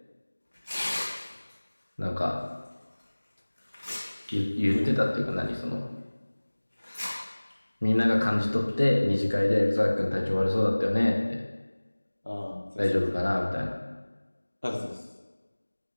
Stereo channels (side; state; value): both; inverted; correlation -1.00